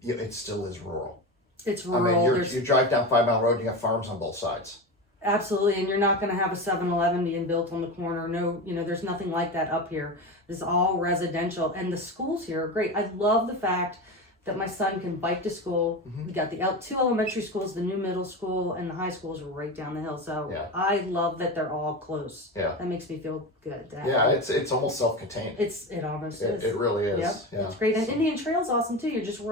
it still is rural. It's rural. I mean, you drive down 5 Mile Road, you got farms on both sides. Absolutely, and you're not going to have a 7-Eleven being built on the corner. No, there's nothing like that up here. This is all residential, and the schools here are great. I love the fact that my son can bike to school. We got the two elementary schools, the new middle school, and the high schools are right down the hill. So I love that they're all close. Yeah, that makes me feel good. It's almost self-contained. It almost is. It really is. Yep. Yeah, it's great. And Indian Trail's awesome too. You're just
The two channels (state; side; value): normal; both; correlation 0.23